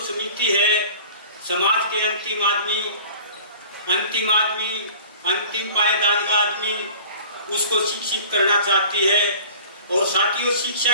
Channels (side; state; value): both; inverted; correlation -0.45